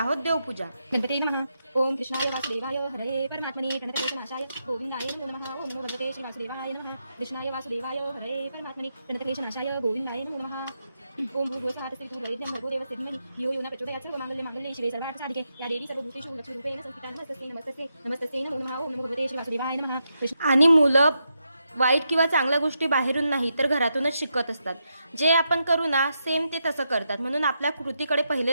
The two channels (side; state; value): both; inverted; correlation -0.84